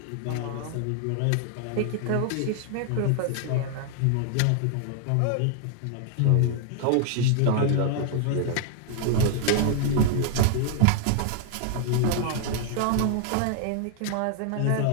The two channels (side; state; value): both; different; correlation 0.00